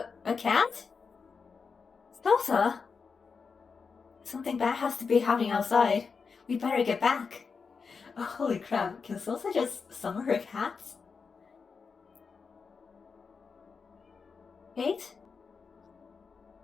A cat? Salsa? Something bad has to be happening outside. We better get back. Oh, holy crap, can Salsa just summon her cats? Kate?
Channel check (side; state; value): right; quieter; 5.3 dB